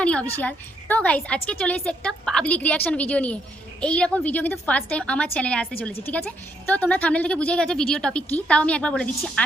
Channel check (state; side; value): normal; both; correlation 0.75